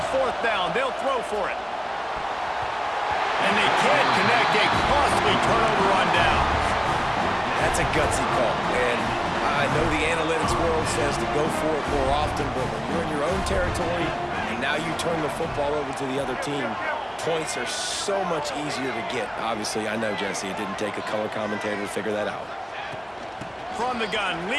fourth down, they'll throw for it. And they can't connect a costly turnover on downs. That's a gutsy call, and I know the analytics world says to go for it more often, but when you're in your own territory and now you turn the football over to the other team, points are so much easier to get. Obviously, I know, Jesse, it didn't take a color commentator to figure that out. From the gun,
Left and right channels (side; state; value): both; identical; correlation 1.00